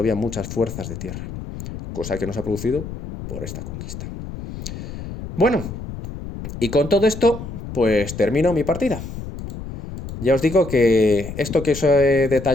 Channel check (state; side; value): noise; left; rumble, 9 dB below the sound